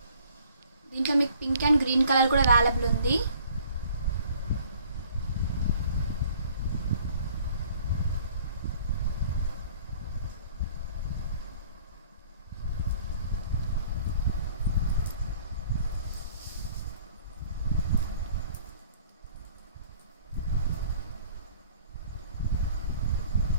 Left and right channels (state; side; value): inverted; both; correlation -0.55